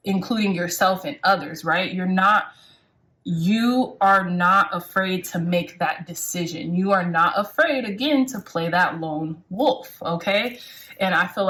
including yourself and others, right? You are not afraid to make that decision. You are not afraid, again, to play that lone wolf, okay? And I feel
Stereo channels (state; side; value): identical; both; correlation 1.00